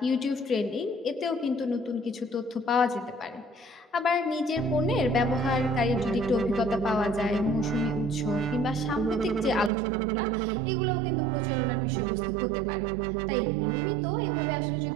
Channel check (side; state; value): left; drops out; at 9.7 s